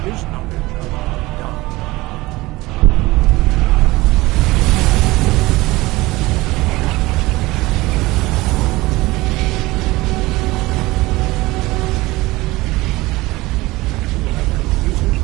his knowledge of Da.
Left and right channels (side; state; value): left; quieter; 20.2 dB